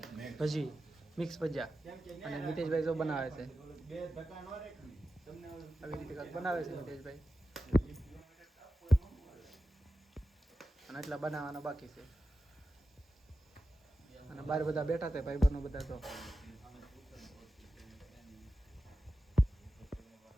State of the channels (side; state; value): both; normal; correlation 0.92